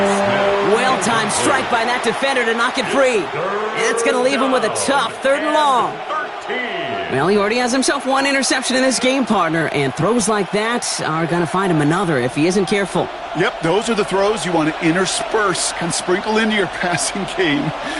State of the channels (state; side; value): identical; both; correlation 1.00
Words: Well-timed strike by that defender to knock it free. And that's going to leave him with a tough 3rd and long. Well, he already has himself 1 interception in this game, partner, and throws like that are going to find him another if he isn't careful. Yep, those are the throws you want to intersperse and sprinkle into your passing game,